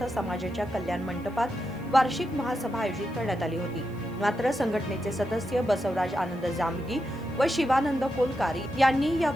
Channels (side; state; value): left; noise; hiss, 29 dB below the sound